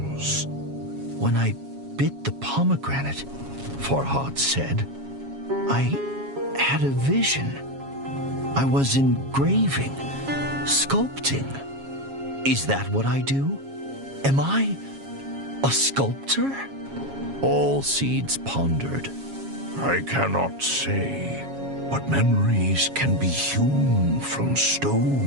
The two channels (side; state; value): left; late; 7.3 ms